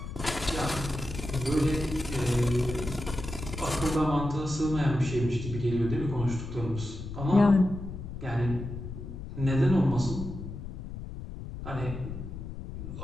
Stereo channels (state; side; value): noise; left; rumble, 9 dB below the sound